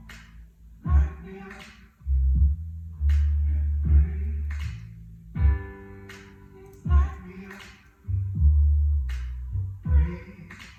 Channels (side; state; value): both; identical; correlation 1.00